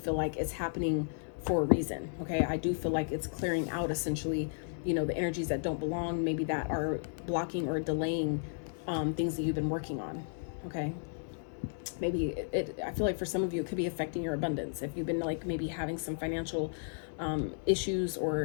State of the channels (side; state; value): right; silent; digital silence